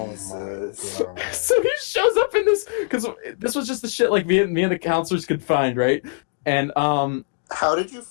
Jesus. my God. So he shows up in this, because this was just the shit like me and the counselors could find, right? And How did you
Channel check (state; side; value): silent; right; digital silence